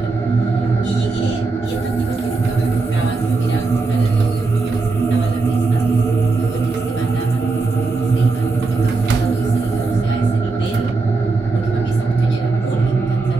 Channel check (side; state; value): left; quieter; 3.8 dB